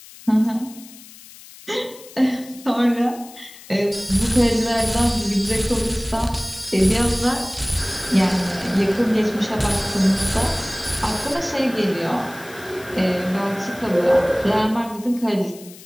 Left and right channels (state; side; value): noise; left; hiss, 19 dB below the sound